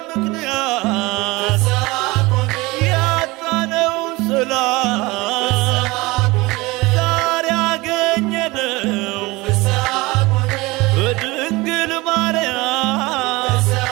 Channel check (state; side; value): quieter; left; 22.1 dB